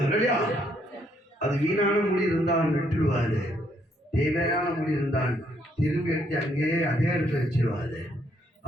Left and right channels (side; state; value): both; normal; correlation 0.71